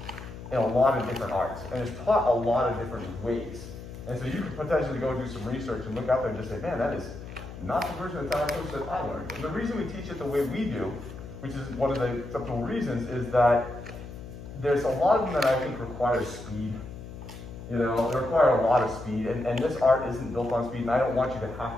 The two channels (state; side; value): noise; left; hum, 12 dB below the sound